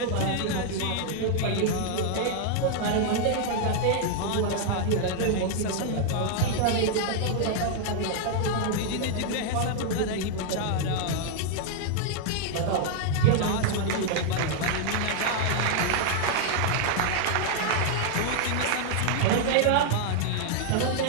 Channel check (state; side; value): different; both; correlation -0.01